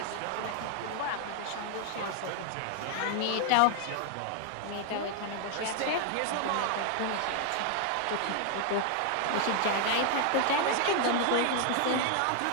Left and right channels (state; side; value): different; both; correlation 0.00